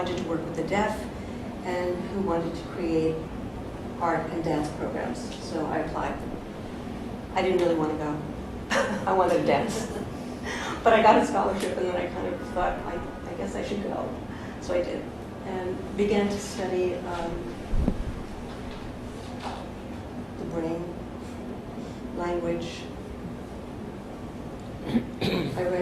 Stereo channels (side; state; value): both; identical; correlation 1.00